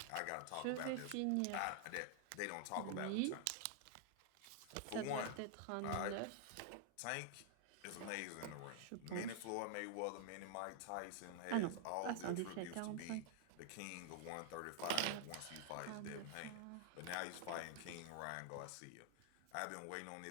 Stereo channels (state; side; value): different; both; correlation 0.00